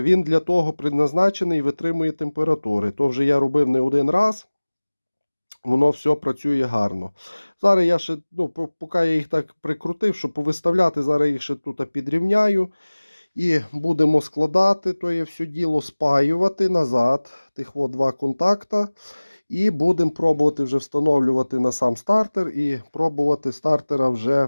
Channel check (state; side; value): inverted; both; correlation -1.00